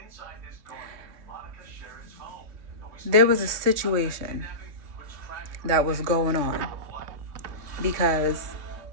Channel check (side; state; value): left; late; 3.3 ms